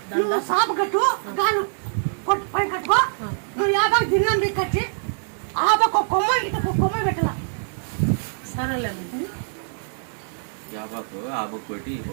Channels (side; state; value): left; silent; digital silence